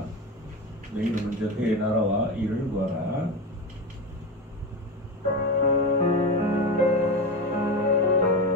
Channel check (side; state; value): both; normal; correlation 0.21